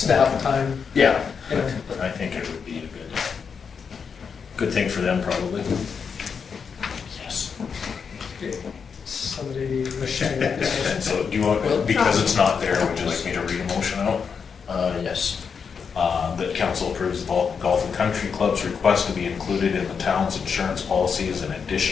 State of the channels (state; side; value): quieter; right; 6.2 dB